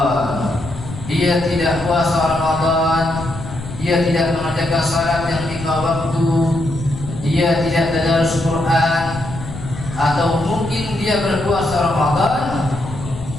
Dia tidak puasa Ramadan, dia tidak mengerjakan salat yang 5 waktu, dia tidak tadarus Quran, atau mungkin dia berpuasa Ramadan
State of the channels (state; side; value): noise; left; rumble, 11 dB below the sound